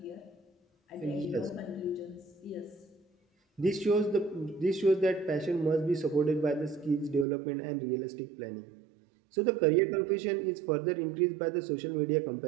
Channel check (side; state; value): left; drops out; at 7.2 s